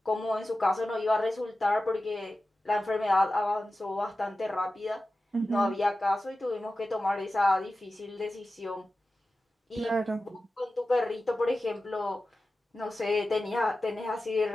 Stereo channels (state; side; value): normal; both; correlation 0.94